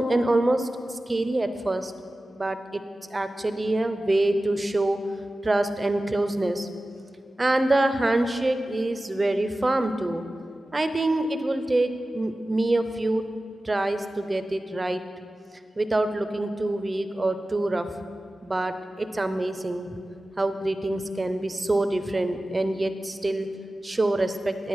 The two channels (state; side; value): normal; both; correlation 0.95